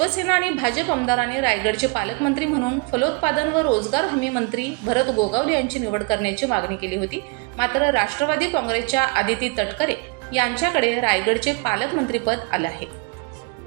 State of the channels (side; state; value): left; quieter; 30.6 dB